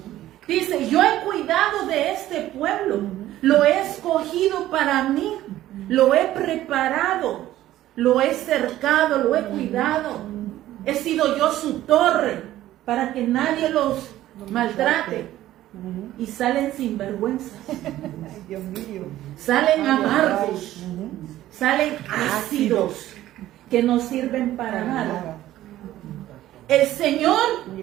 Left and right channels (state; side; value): quieter; left; 14.1 dB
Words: Dice, yo he cuidado de este pueblo, lo he escogido para mí, lo he preparado, lo he cercado, lo he cuidado. He sido yo su torre para que nadie los maltrate. Y salen sin vergüenza. Salen amargos. Salen ácidos que no sirven para nada. El Señor